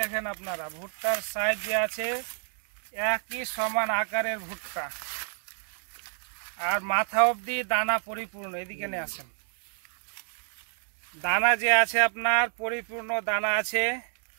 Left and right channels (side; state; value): left; silent; 58 dB below the other